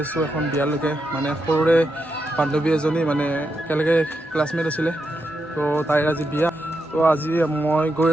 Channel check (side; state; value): both; normal; correlation 0.85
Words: আছোঁ এখন বিয়ালৈকে মানে সৰুৰে বান্ধৱী এজনী মানে একেলগে ক্লাছমেট আছিলে তো তাইৰ আজি বিয়া তো আজি মই গৈ